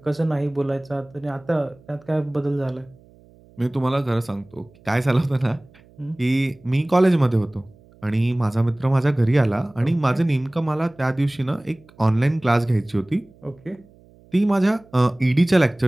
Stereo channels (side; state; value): right; noise; hum, 27 dB below the sound